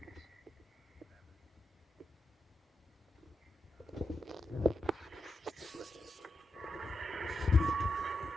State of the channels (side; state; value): both; normal; correlation 0.87